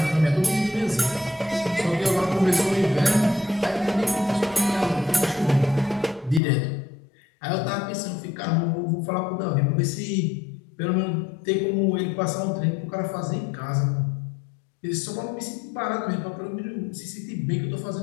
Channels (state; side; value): drops out; right; at 6.4 s